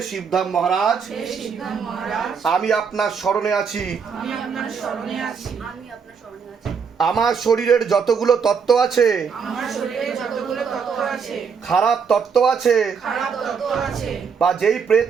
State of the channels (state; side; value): quieter; left; 6.2 dB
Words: শিবধাম মহারাজ, আমি আপনার শরণে আছি। আমার শরীরের যতগুলো তত্ত্ব আছে, খারাপ তত্ত্ব আছে, বা যেই প্রেত